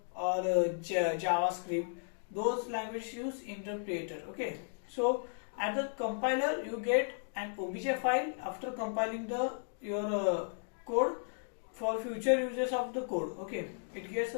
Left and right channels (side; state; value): right; silent; digital silence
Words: or JavaScript. Those languages use interpreter. Okay, so at the compiler you get an obj file after compiling your code for future uses of the code. Okay, it gets